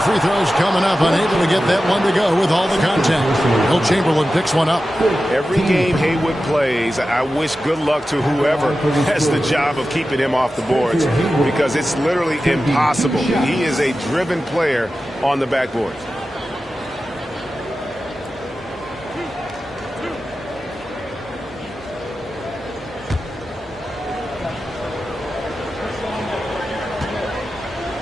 free throws coming up. Unable to get that one to go with all the contact. Will Chamberlain picks one up. Every game Haywood plays, I wish good luck to whoever has the job of keeping him off the boards, because it's literally impossible. He is a driven player on the backboard.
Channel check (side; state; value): both; normal; correlation 0.93